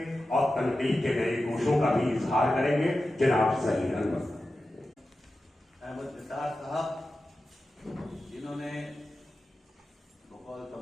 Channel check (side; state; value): both; normal; correlation 0.93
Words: और तनकीद के नए गोशों का भी इजहार करेंगे। जनाब सही अहमद निसार साहब, जिन्होंने बकौल